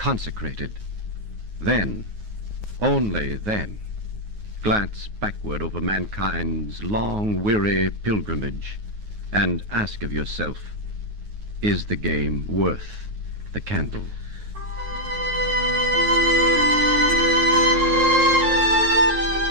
then, only then, glance backward over mankind's long, weary pilgrimage and ask of yourself, is the game worth the candle?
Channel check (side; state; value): left; late; 9.4 ms